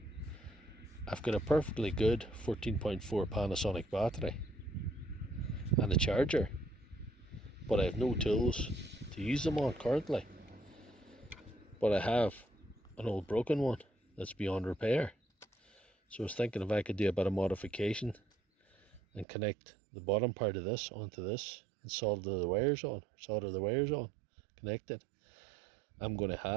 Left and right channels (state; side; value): drops out; left; at 19.2 s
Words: I've got a perfectly good 14.4 Panasonic battery and a charger, but I have no tools to use them on currently. But I have an old broken one that's beyond repair. So I was thinking if I could do a bit of modification and connect the bottom part of this onto this and solder the wires on, connect it, I'm going to